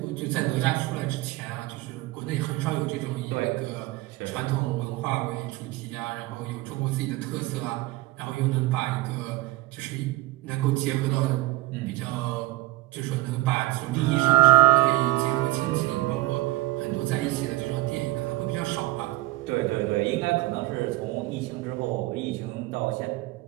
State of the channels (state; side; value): quieter; left; 18.2 dB